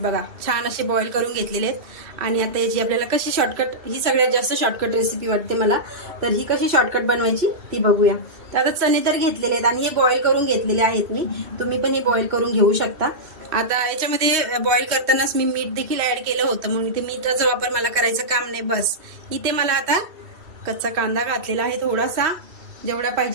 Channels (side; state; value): left; late; 2.7 ms